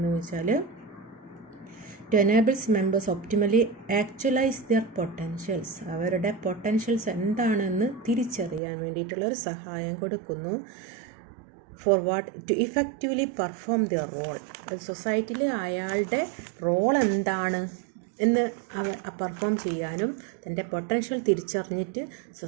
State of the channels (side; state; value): left; drops out; at 8.6 s